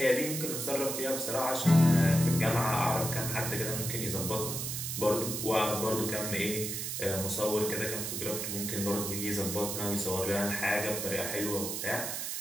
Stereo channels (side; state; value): right; noise; hiss, 3 dB below the sound